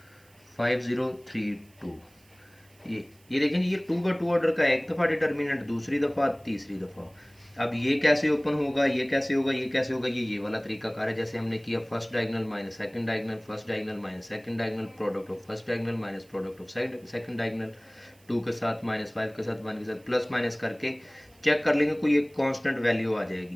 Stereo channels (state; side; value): noise; right; hiss, 30 dB below the sound